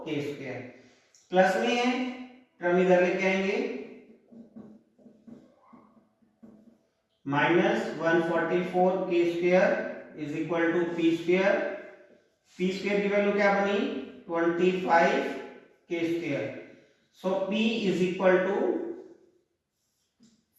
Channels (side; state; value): both; identical; correlation 1.00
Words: स्क्वायर. प्लस में है टर्म इधर लेके आएंगे, minus 144k square is equal to p square. p square की वैल्यू क्या बनी 25k square. So p is equal to